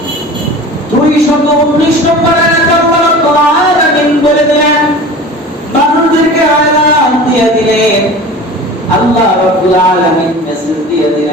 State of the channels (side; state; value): both; normal; correlation 0.38